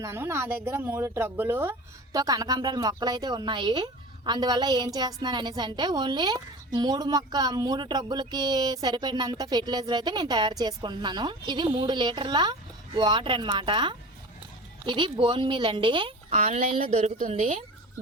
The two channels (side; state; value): both; normal; correlation 0.35